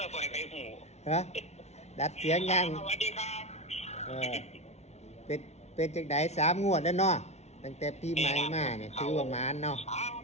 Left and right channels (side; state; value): right; late; 0.32 ms